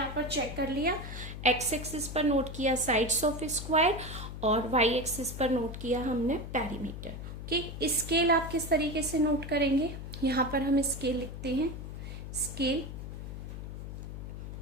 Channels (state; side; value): noise; left; hum, 8 dB below the sound